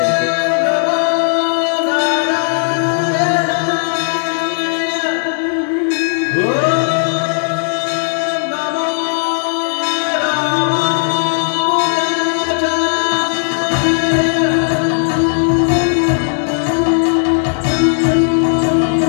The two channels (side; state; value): right; silent; 69 dB below the other